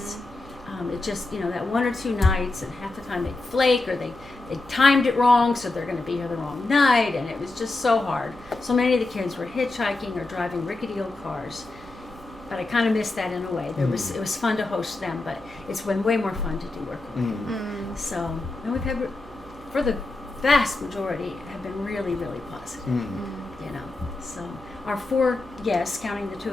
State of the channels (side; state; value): right; quieter; 3.1 dB